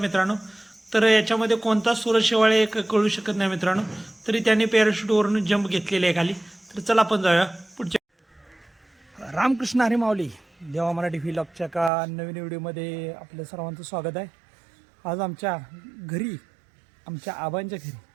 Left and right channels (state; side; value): drops out; left; at 11.9 s